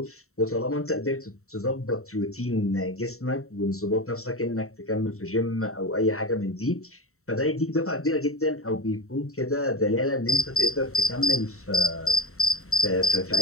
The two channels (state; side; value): late; right; 0.63 ms